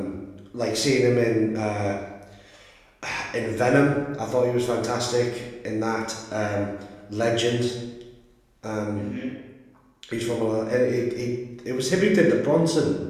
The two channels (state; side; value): identical; both; correlation 1.00